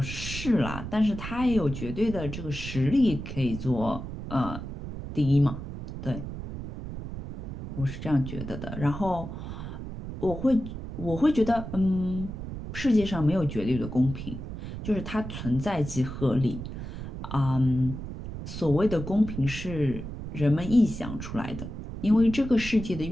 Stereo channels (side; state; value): right; noise; rumble, 8 dB below the sound